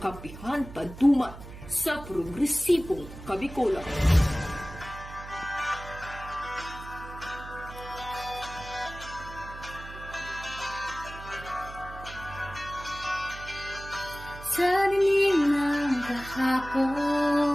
paduman sa progresibong kabikulan. sa dilim ng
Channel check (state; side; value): noise; right; hum, 14 dB below the sound